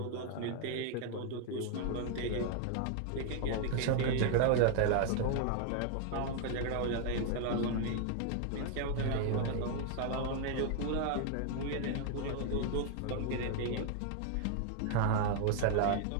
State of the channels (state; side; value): different; both; correlation 0.00